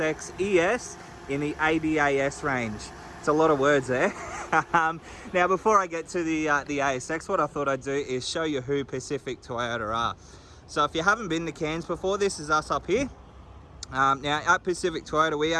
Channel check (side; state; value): both; identical; correlation 1.00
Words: ES in the ADAS range. It's a lot of words there. Now, before I get to the ASX, what I thought I'd do is show you who Pacific Toyota are. So if you haven't been to Cairns before, this is us up here. Now, at Pacific Toyota, we